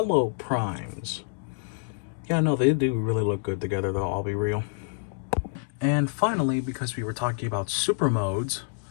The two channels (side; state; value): right; silent; digital silence